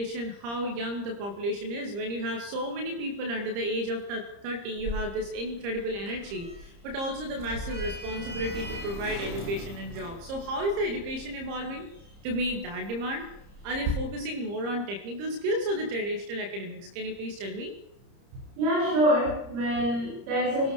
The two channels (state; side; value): late; left; 30 ms